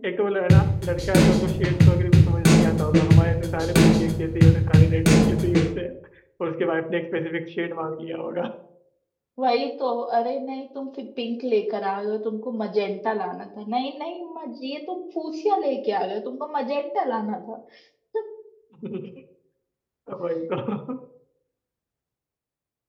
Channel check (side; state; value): both; identical; correlation 1.00